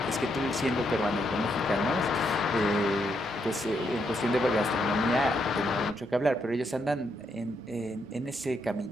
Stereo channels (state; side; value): normal; both; correlation 0.78